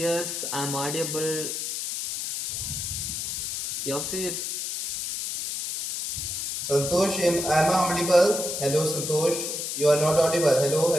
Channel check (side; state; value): left; noise; hiss, 4 dB below the sound